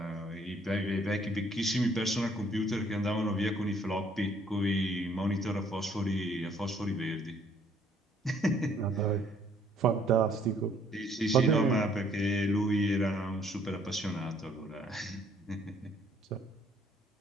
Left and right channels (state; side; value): normal; both; correlation 0.63